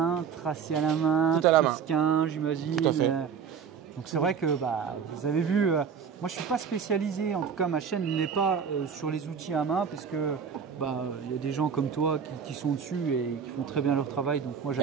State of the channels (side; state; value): left; quieter; 6.8 dB